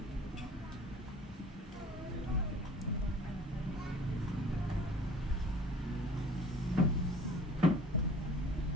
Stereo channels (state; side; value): normal; both; correlation 0.48